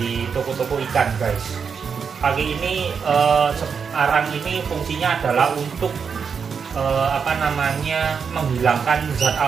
toko-toko ikan, guys. Pagi ini arang ini fungsinya adalah untuk menghilangkan zat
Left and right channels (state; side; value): quieter; left; 6.2 dB